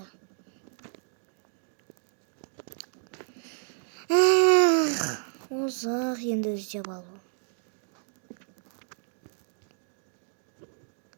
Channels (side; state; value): left; silent; digital silence